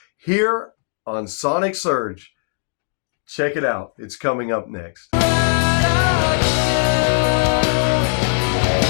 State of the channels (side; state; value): right; silent; digital silence